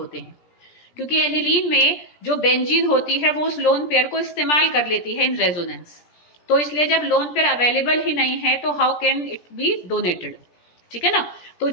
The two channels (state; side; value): late; right; 17 ms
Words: हैं, क्योंकि एनिलीन में जो बेंजीन होती है वो उस लोन पेयर को इस्तेमाल कर लेती है इन रेजोनेंस, तो इसलिए जब लोन पेयर अवेलेबल ही नहीं है तो how can it be donated, ठीक है ना। तो